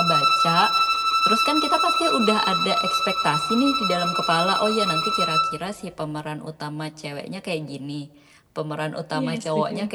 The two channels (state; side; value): identical; both; correlation 1.00